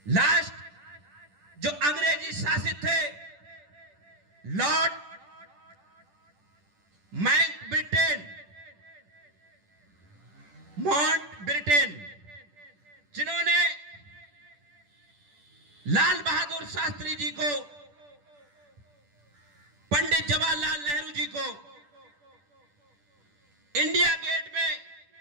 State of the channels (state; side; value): late; left; 10 ms